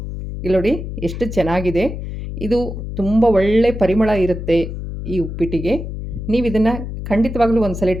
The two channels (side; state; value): left; noise; hum, 7 dB below the sound